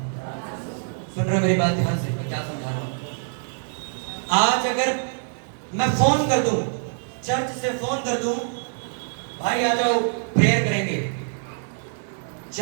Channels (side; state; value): left; silent; digital silence